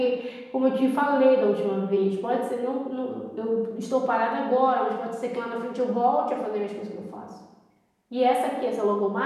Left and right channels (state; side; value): identical; both; correlation 1.00